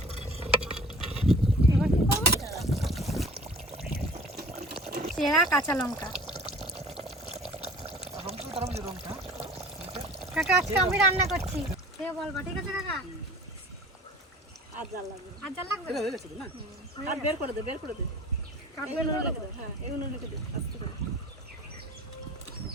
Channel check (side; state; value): both; normal; correlation 0.45